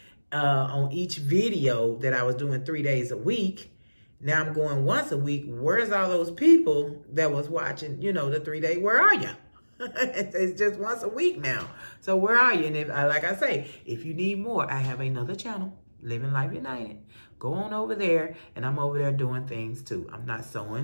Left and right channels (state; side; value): inverted; both; correlation -1.00